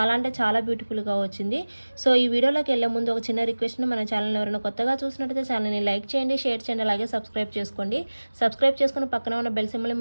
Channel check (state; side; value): inverted; both; correlation -1.00